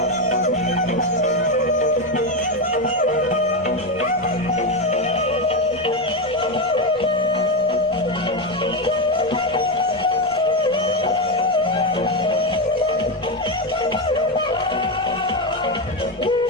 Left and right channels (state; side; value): noise; left; rumble, 26 dB below the sound